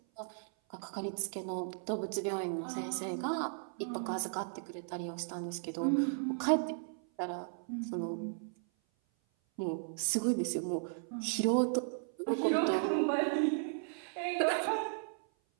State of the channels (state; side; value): silent; left; 54 dB below the other